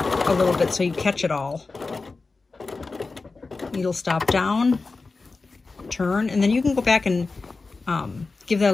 a little bit so you catch it all. Needle stop down, turn, and then you can go back and give that a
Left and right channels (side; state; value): right; quieter; 3.9 dB